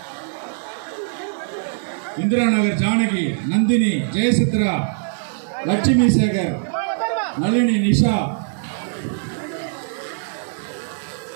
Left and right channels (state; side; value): silent; left; 60 dB below the other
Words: இந்திரா நகர் ஜானகி, நந்தினி, ஜெயசித்ரா, லட்சுமி சேகர், நளினி, நிஷா.